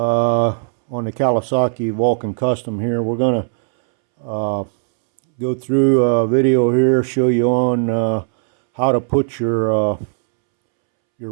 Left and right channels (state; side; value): silent; left; 68 dB below the other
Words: the Kawasaki Vulcan Custom here. We're going to go through a video here, show you on how to put your